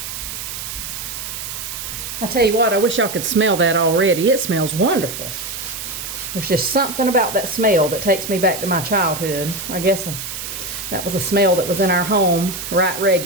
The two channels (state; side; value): noise; right; hiss, 7 dB below the sound